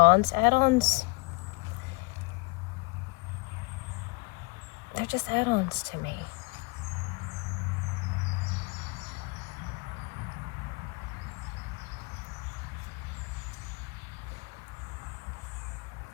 Add-ons, they're just add-ons to me.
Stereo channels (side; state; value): right; quieter; 28.9 dB